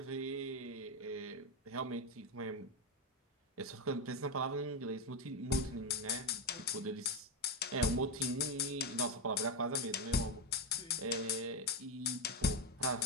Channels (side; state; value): both; normal; correlation 0.08